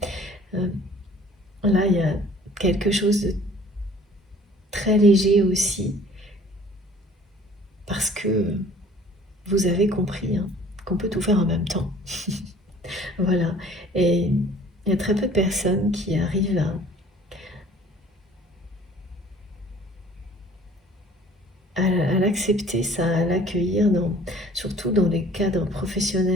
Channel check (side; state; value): both; normal; correlation 0.52